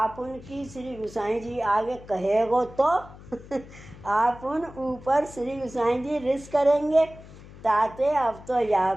उनकी श्री गुसाई जी आगे कहेगो तो आप उन ऊपर श्री गुसाई जी रिस करेंगे। ताते अब तो या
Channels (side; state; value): left; noise; hum, 18 dB below the sound